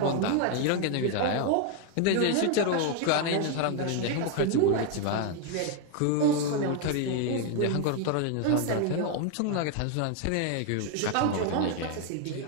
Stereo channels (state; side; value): different; both; correlation 0.00